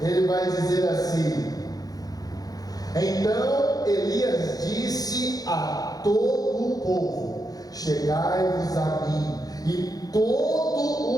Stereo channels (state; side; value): late; right; 0.18 ms